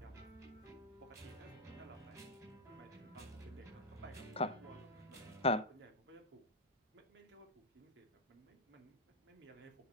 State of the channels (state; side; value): normal; both; correlation 0.01